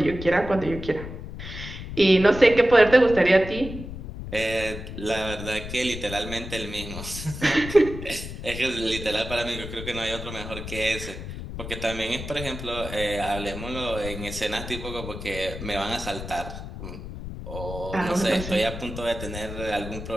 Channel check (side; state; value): left; noise; rumble, 9 dB below the sound